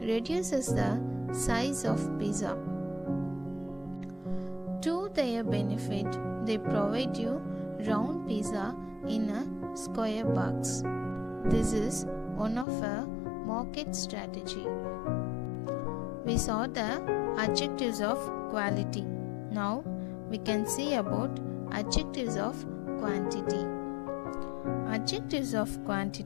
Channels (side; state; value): right; drops out; at 12.7 s